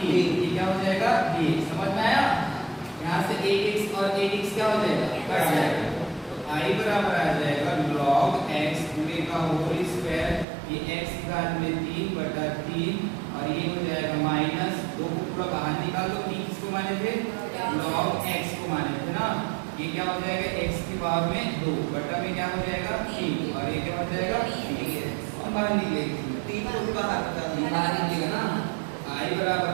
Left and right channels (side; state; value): left; drops out; at 10.5 s